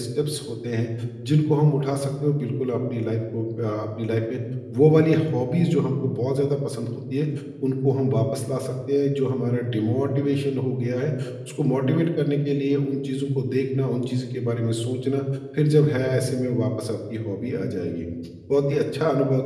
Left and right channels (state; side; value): identical; both; correlation 1.00